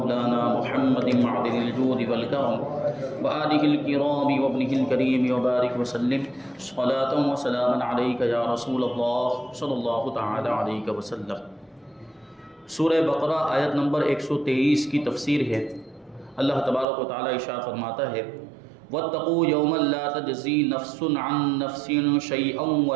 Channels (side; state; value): left; drops out; at 16.9 s